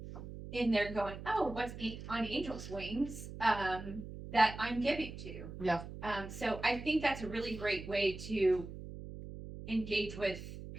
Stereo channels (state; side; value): noise; right; hum, 11 dB below the sound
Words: in there going, oh, what's on Angel's Wings, that I'm giving to. Yeah. So I think that's a really great way to engage with